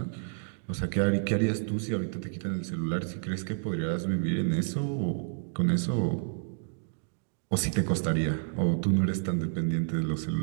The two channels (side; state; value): left; silent; digital silence